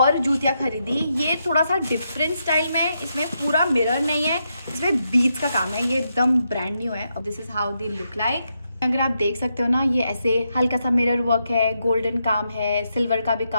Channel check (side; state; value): both; inverted; correlation -0.82